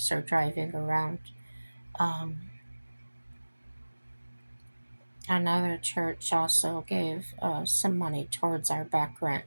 or driving around. Um, Another church also gave some money towards our back rent.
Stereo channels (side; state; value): both; inverted; correlation -1.00